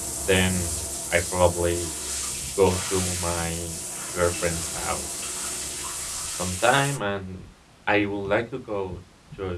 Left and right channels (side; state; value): both; identical; correlation 1.00